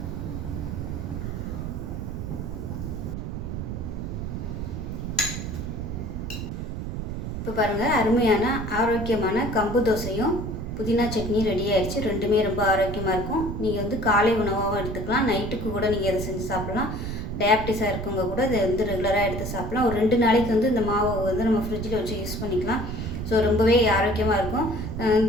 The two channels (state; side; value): noise; right; rumble, 5 dB below the sound